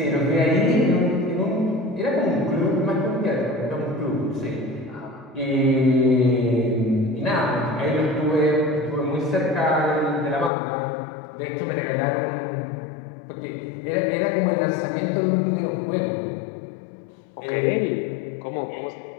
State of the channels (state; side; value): drops out; right; at 10.5 s